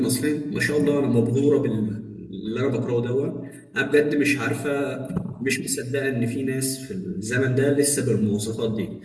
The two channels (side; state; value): both; identical; correlation 1.00